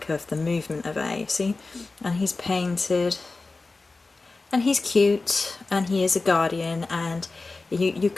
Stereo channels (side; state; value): right; quieter; 3.6 dB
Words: of the movement of air, see? And he's painted. And he's cute. And he is a guardian. And you